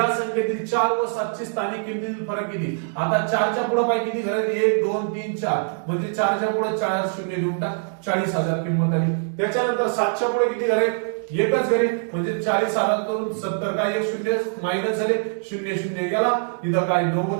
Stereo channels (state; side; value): silent; left; digital silence